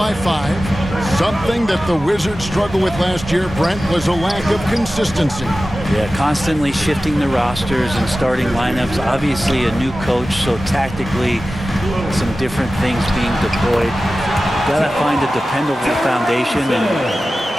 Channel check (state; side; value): normal; both; correlation 0.95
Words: 5. Something that the Wizards struggled with last year, Brent, was a lack of consistency. Yeah, constantly shifting the rosters and starting lineups. Obviously a new coach, so tactically some different things being deployed. Got to find a dependable foundation,